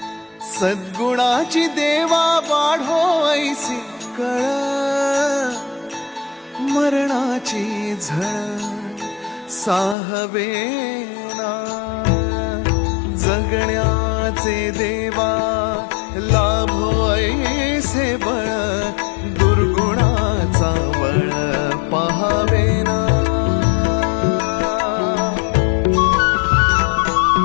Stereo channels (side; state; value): right; drops out; at 10.0 s